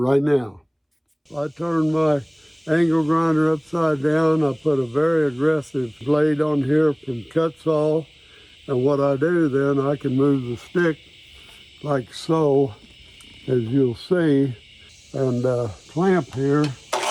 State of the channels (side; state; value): both; identical; correlation 1.00